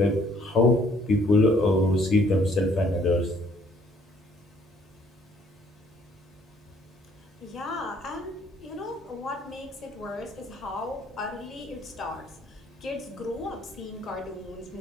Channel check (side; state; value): both; normal; correlation 0.63